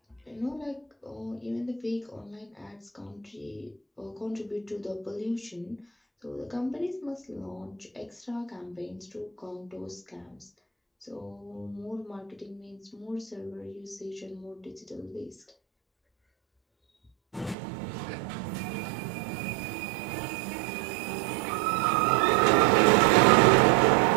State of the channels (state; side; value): drops out; left; at 17.6 s